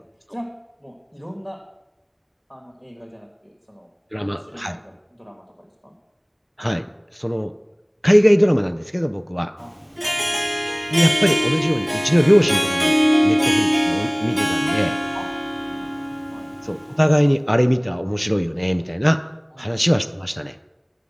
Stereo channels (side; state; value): both; identical; correlation 1.00